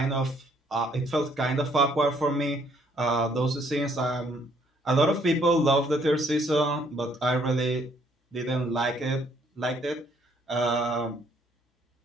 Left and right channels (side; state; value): both; normal; correlation 0.66